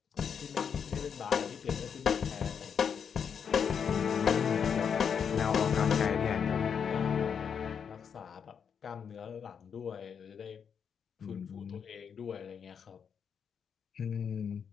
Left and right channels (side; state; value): right; quieter; 7.1 dB